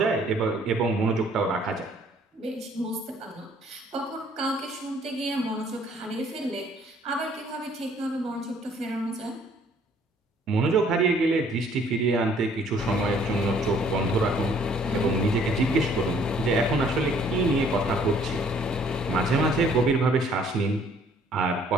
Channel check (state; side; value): normal; both; correlation 0.60